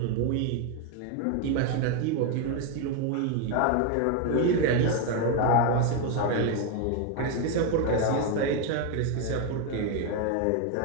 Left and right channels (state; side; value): different; both; correlation 0.01